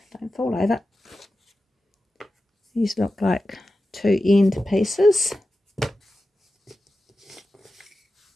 don't fall over. These look like two end pieces.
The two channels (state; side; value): normal; both; correlation 0.93